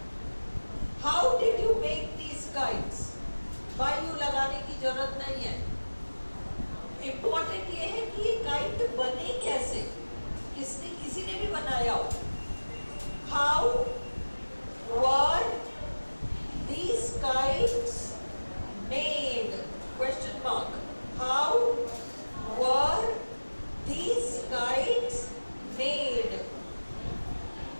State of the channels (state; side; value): inverted; both; correlation -1.00